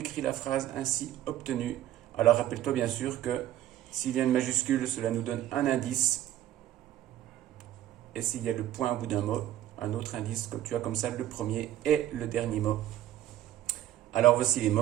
la phrase ainsi obtenue. Alors, rappelle-toi bien sûr que s'il y a une majuscule, cela nous donne un indice. Et s'il y a le point au bout d'un mot, un autre indice, comme tu as comme ça le premier et le dernier mot. Alors, voici les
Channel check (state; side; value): quieter; left; 12.8 dB